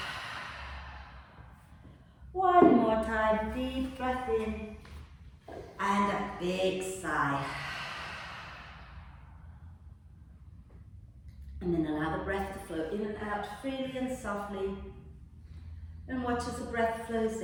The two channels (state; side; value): identical; both; correlation 1.00